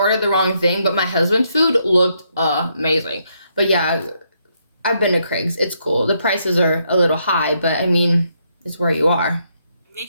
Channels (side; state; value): both; inverted; correlation -0.76